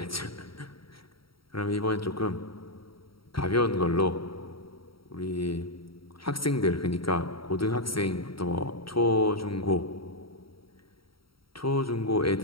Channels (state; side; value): late; right; 0.75 ms